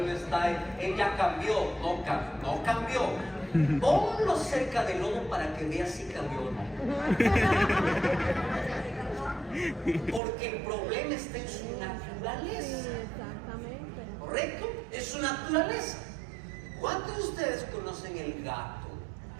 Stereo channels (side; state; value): left; drops out; at 10.2 s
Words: no está, él ya cambió, no cambió. Ponlo cerca del lodo para que vea si cambió o no. Porque el problema está en su naturaleza. Exactamente. ¿Correcto? Es su naturaleza. ¿Cuántos de ustedes conocen el gato?